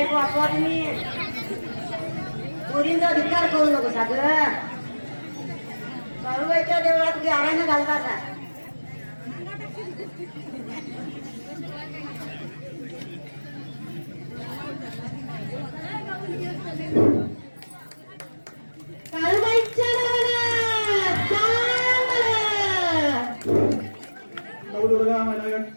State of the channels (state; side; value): inverted; both; correlation -1.00